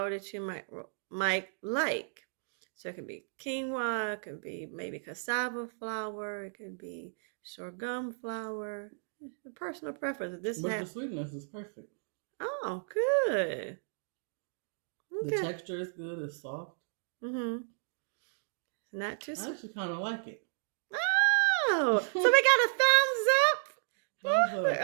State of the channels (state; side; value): silent; left; digital silence